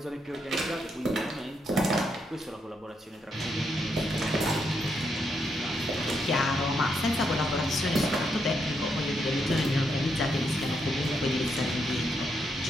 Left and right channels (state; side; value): normal; both; correlation 0.79